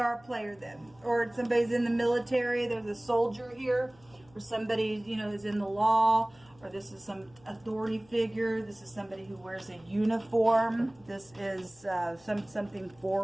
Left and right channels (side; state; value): left; noise; hum, 28 dB below the sound